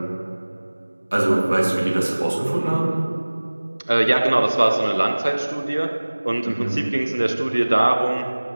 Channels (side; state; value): both; inverted; correlation -1.00